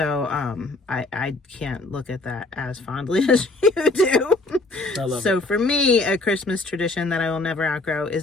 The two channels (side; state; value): right; quieter; 3.0 dB